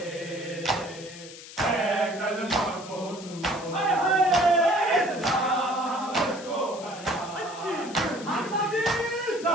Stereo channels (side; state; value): left; noise; hiss, 15 dB below the sound